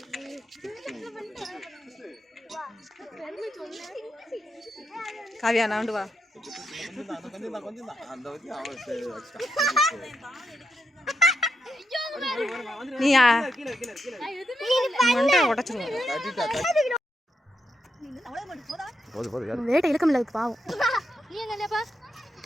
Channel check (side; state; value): both; normal; correlation 0.82